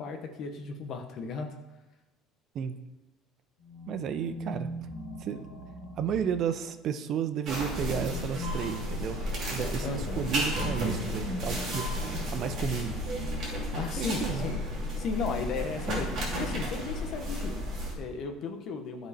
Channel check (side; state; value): both; normal; correlation 0.48